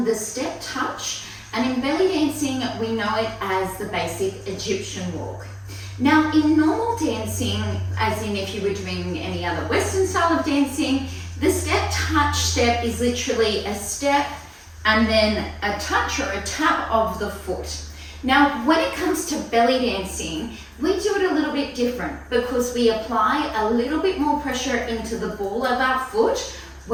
the step touch, and in belly dancing we know it as the basic Egyptian walk. Now in normal dancing, as in if you were doing any other Western style of dancing, the step touch step is literally a step and then a touch or a tap of the foot. Now when it comes to belly dancing, we do it a little bit different because we apply a little bit more pressure into the ball of our foot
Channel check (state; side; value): identical; both; correlation 1.00